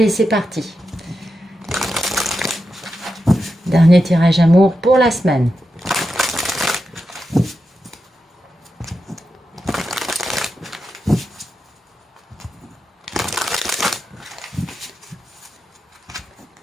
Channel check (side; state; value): both; normal; correlation 0.88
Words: c'est parti. Dernier tirage amour pour la semaine.